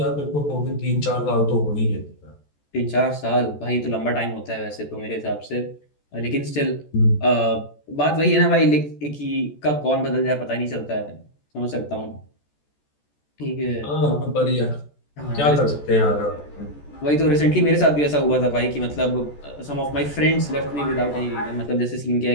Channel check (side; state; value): right; late; 14 ms